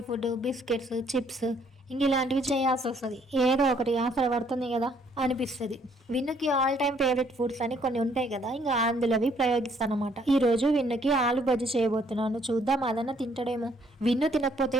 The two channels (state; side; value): normal; both; correlation 0.65